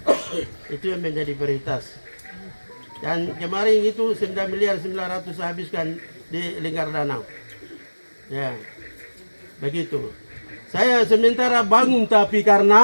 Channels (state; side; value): inverted; both; correlation -1.00